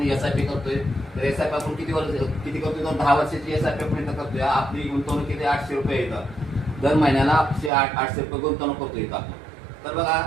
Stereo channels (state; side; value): drops out; left; at 7.7 s